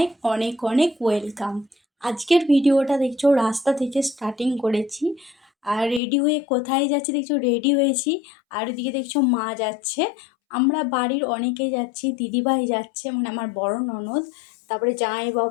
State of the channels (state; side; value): drops out; right; at 6.0 s